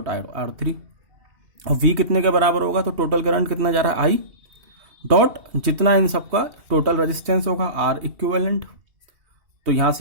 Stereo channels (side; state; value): left; late; 2.7 ms